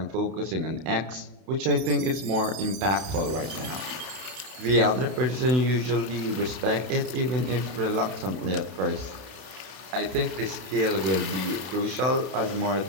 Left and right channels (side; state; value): left; late; 32 ms